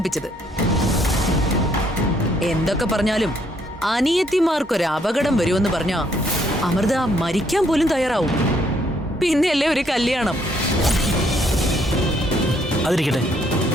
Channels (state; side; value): normal; both; correlation 0.69